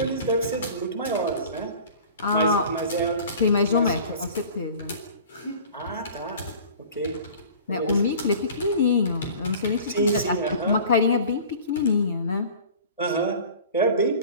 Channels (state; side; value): inverted; both; correlation -0.43